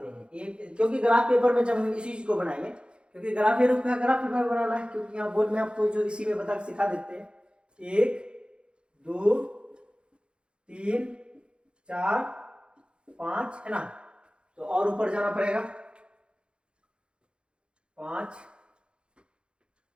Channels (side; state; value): left; late; 0.054 ms